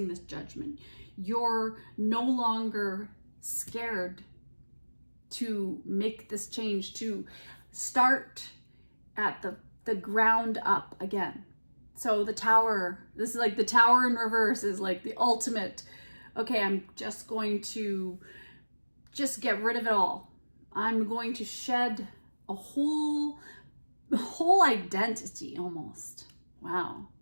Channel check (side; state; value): both; inverted; correlation -1.00